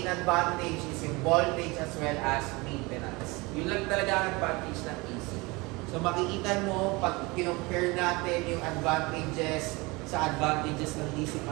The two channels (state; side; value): quieter; left; 24.6 dB